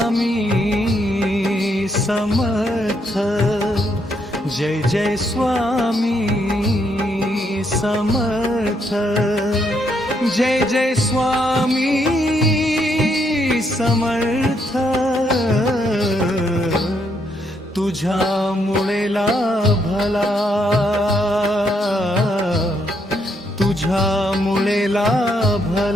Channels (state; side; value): normal; both; correlation 0.75